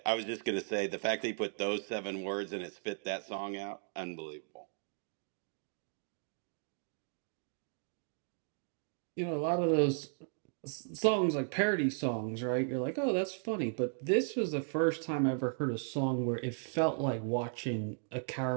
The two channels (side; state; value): left; silent; 54 dB below the other